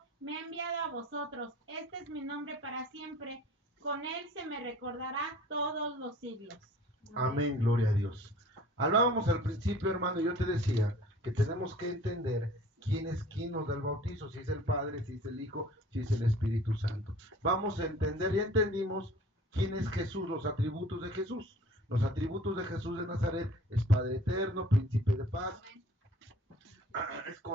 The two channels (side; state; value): both; normal; correlation 0.49